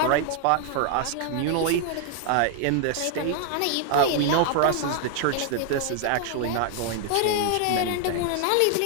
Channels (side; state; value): both; different; correlation 0.00